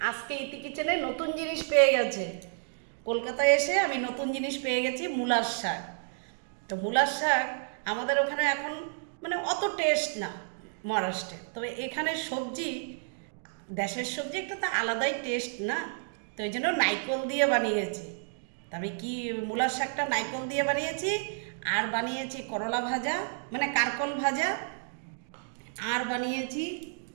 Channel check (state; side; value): silent; left; digital silence